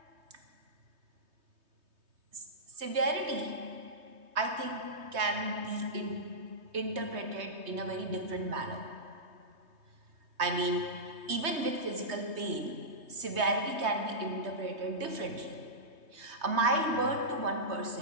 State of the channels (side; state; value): left; late; 3.2 ms